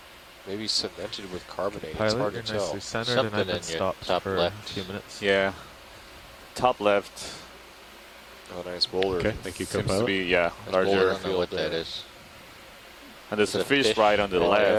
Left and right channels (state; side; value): identical; both; correlation 1.00